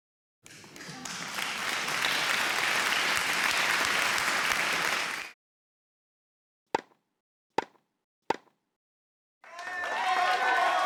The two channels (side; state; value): both; identical; correlation 1.00